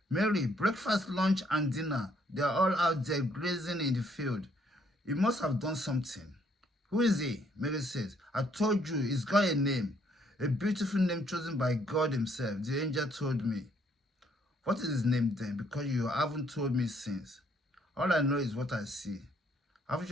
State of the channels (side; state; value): both; normal; correlation 0.68